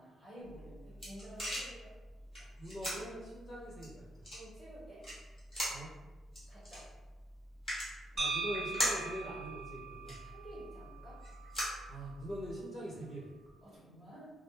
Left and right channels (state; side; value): normal; both; correlation 0.74